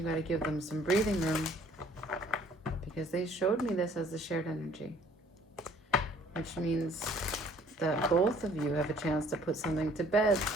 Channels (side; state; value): both; normal; correlation 0.57